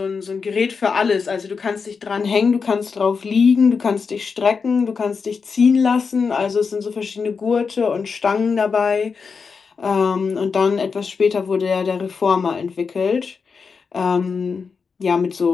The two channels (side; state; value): right; quieter; 5.3 dB